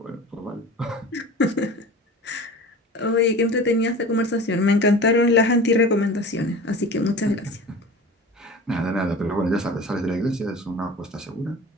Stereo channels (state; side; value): normal; both; correlation 0.37